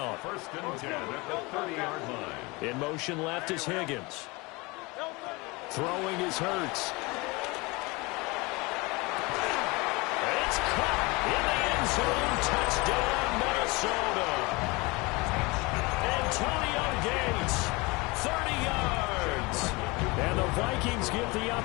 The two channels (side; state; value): right; quieter; 25.1 dB